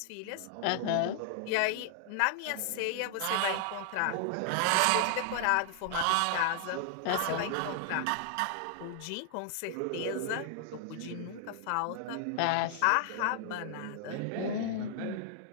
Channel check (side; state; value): both; different; correlation 0.00